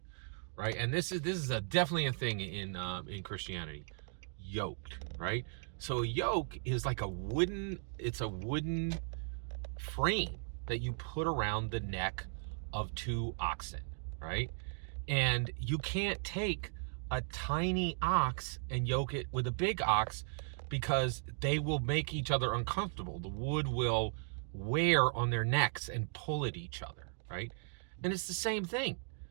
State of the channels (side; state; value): left; silent; 53 dB below the other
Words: right? And this is definitely a thing in Christianity. Yoked, right? So a yoke is like a wooden frame that you put around the neck of 2 oxen, right? And you can't take a tiny ox and yoke it with a big ox, because they will make each other uncomfortable. The wood will wear on their necks and pull at each other, right? And it's the same thing.